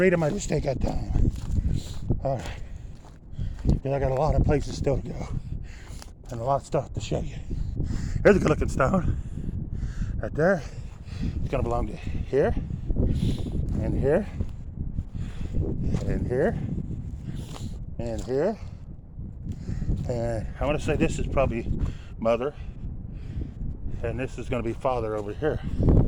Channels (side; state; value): both; identical; correlation 1.00